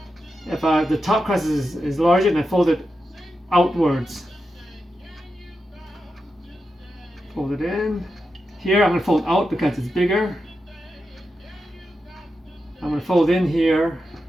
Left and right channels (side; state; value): both; normal; correlation 0.88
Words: If the top crust is larger, then I fold it outwards. Fold it in. Here I'm going to fold out because it's bigger. I'm going to fold in here.